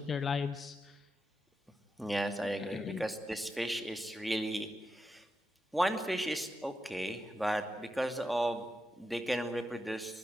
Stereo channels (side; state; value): both; normal; correlation 0.87